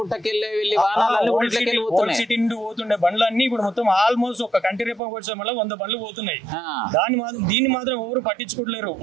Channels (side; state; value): left; drops out; at 5.0 s